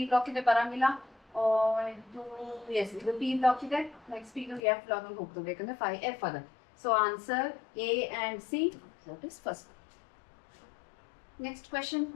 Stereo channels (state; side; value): drops out; right; at 4.6 s